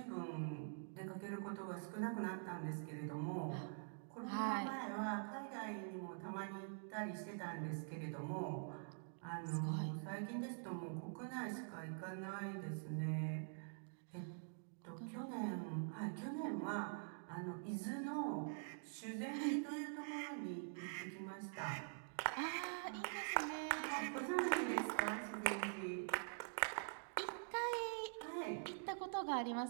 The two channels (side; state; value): left; silent; digital silence